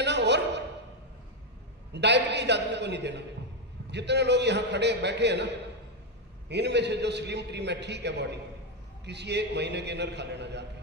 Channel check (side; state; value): both; normal; correlation 0.05